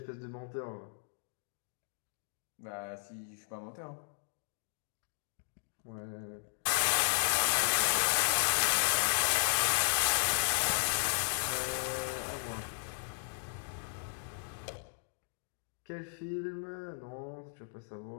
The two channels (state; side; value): silent; right; digital silence